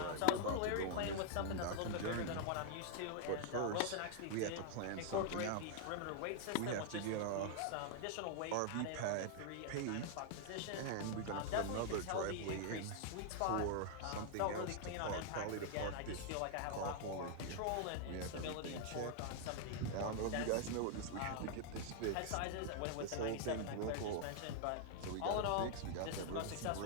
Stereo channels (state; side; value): different; both; correlation 0.00